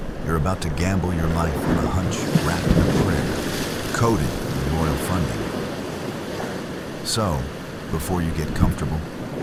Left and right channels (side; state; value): both; identical; correlation 1.00